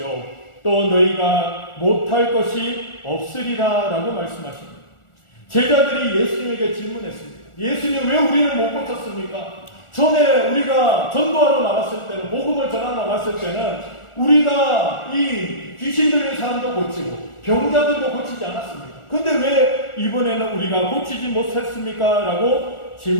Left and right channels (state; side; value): late; right; 1.4 ms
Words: 또 너희가 못할 것이 없으리라 라고 말씀하십니다. 제자들이 예수님에게 질문했습니다. 예수님, 왜 우리는 못 고쳤습니까? 전에 우리가 전도하러 나갔을 때는, 복음을 전하러 나갔을 때는 우리가 이 귀신 들린 사람도 고치고 병자들도 고치지 않았습니까? 근데 왜 이번에는 우리가 고치지 못했습니까? 라고